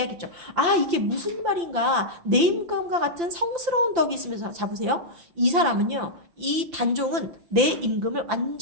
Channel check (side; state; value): left; late; 5.8 ms